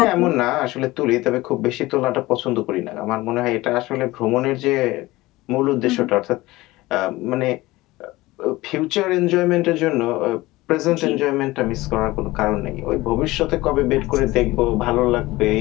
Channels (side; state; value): right; quieter; 19.3 dB